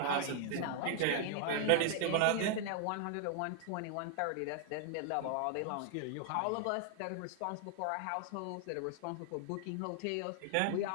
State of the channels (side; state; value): both; different; correlation 0.00